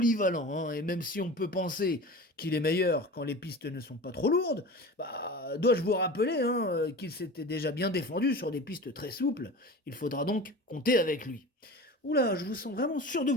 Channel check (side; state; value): both; normal; correlation 0.34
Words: hein, et même si on peut penser qu'il est meilleur quand les pistes ne sont pas trop lourdes, bah, dois-je vous rappeler, hein, qu'il s'était déjà bien défendu sur des pistes très souples. Il faudra donc compter avec lui. Oula, je vous sens vraiment sûr de